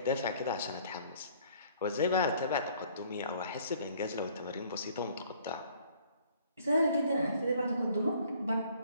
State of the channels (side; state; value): both; inverted; correlation -0.58